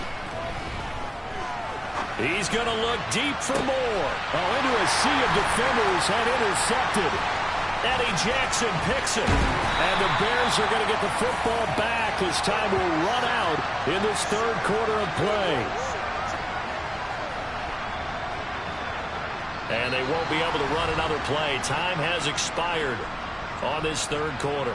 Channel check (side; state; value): both; identical; correlation 1.00